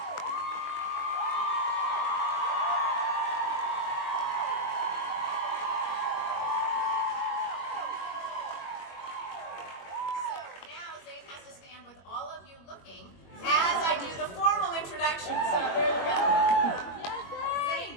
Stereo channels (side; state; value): right; late; 21 ms